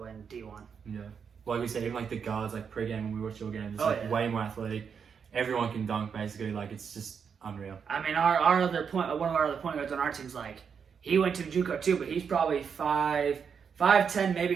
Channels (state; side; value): quieter; left; 6.7 dB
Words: and D1. Yeah. Like we said, even like the guards, like pre-game when we watch your games, it's way more athletic. Everyone can dunk basically. Like it's just unreal. I mean, one of our other point guards on our team's like he went to Juco too, but he's probably 5'10", maybe